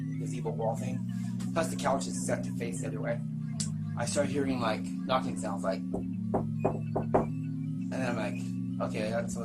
gazebo wall thing. Plus the couch is set to face the other way. I start hearing like knocking sounds, like, and then I'm like, okay, that's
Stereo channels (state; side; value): identical; both; correlation 1.00